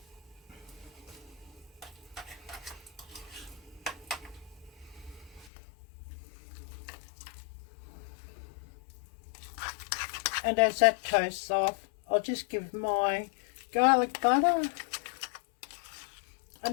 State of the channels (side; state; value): right; drops out; at 5.5 s